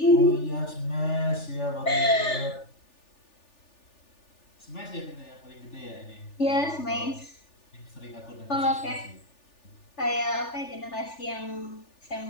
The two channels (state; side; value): late; right; 3.4 ms